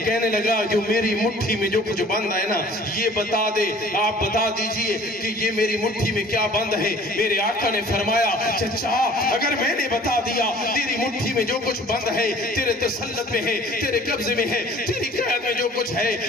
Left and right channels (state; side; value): normal; both; correlation 0.50